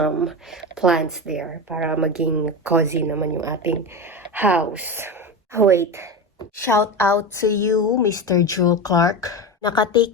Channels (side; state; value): both; normal; correlation 0.21